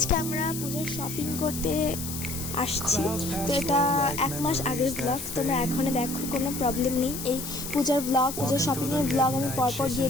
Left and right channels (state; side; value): noise; left; hiss, 8 dB below the sound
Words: আমরা পূজার শপিং করতে আসছি। তো এটা 1 মাস আগের ব্লগ, তোমরা এখনই দেখো, কোনো প্রবলেম নেই। এই পূজার ব্লগ, পূজার শপিংয়ের ব্লগ আমি পরপর দিয়ে